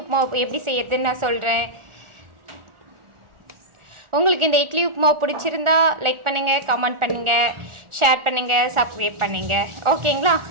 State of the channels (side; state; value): left; late; 1.4 ms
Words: எப்படி செய்யறதுன்னு நான் சொல்கிறேன். உங்களுக்கு இந்த இட்லி உப்புமா பிடிச்சிருந்தா லைக் பண்ணுங்கள், கமெண்ட் பண்ணுங்கள், ஷேர் பண்ணுங்கள், சப்ஸ்கிரைப் பண்ணுங்கள். ஓகேங்களா?